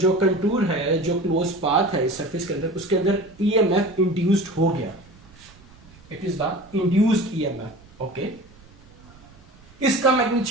कंटूर है, जो क्लोज पाथ है इस सरफेस के अंदर, उसके अंदर ईएमएफ इंड्यूस्ड हो गया, it is the induced EMF. Okay, इसका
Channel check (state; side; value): noise; right; rumble, 25 dB below the sound